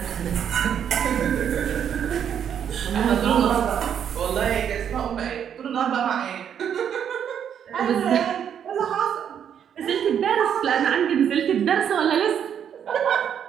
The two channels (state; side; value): quieter; left; 8.7 dB